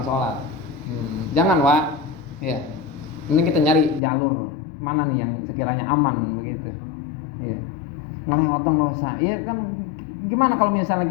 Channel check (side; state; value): right; drops out; at 4.0 s